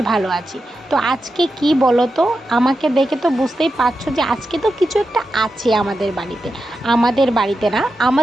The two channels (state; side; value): normal; both; correlation 0.89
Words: ভালো আছি। তো আজকে কি বলো তো, আমাকে দেখে তো বুঝতেই পারছো যে আজকে তো কিছু একটা আছে আমাদের বাড়িতে না,